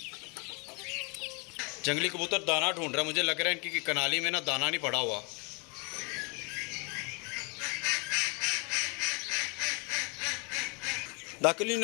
जंगली कबूतर दाना ढूंढ रहा है। मुझे लग रहा है इनकी कनाली में ना दाना नहीं पड़ा हुआ। दाकलीन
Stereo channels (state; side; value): quieter; right; 32.5 dB